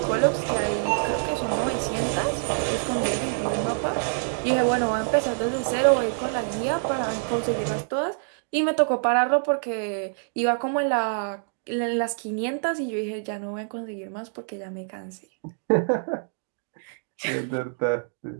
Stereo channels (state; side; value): silent; left; digital silence